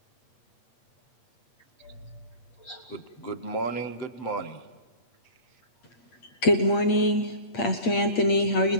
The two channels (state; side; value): late; right; 8.5 ms